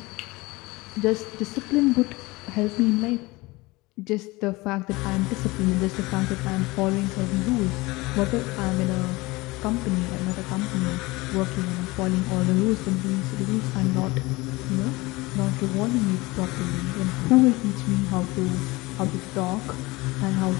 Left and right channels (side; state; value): right; quieter; 22.2 dB